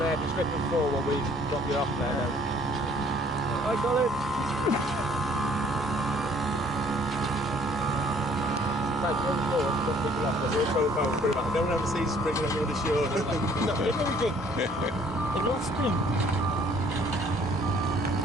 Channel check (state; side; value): normal; both; correlation 0.58